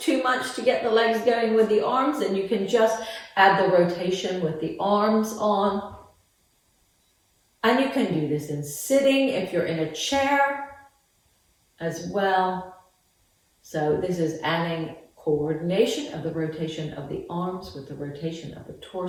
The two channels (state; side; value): identical; both; correlation 1.00